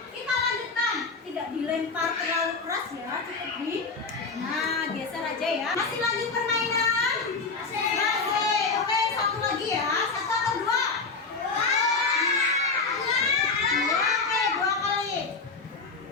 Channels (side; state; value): right; quieter; 4.3 dB